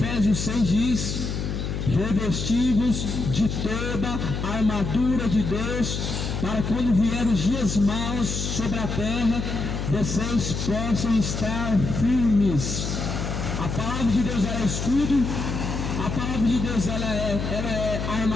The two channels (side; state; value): left; noise; hum, 3 dB below the sound